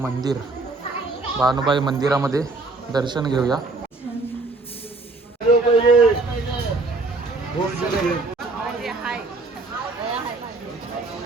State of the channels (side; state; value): left; quieter; 3.4 dB